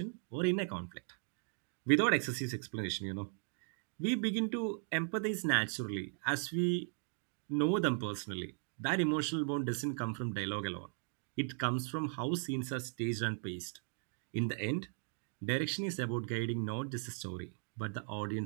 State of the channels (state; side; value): silent; left; 53 dB below the other